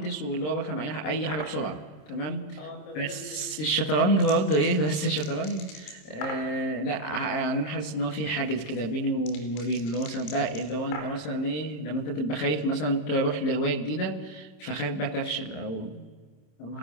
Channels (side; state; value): right; late; 27 ms